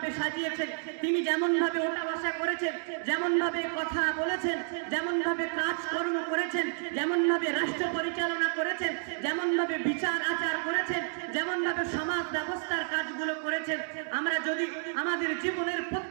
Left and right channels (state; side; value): silent; left; 58 dB below the other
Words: সাজিয়েছেন, তিনি যেমন ভাবে ওঠা বসা করেছেন, যেমন ভাবে কথা বলেছেন, যেমন ভাবে কাজকর্ম করেছেন, যেমন ভাবে রাষ্ট্র পরিচালনা করেছেন, যেমন ভাবে বিচার আচার করেছেন, যেমন ভাবে সমাজ ব্যবস্থার কাজগুলো করেছেন, আমরা যদি আমাদের জীবনের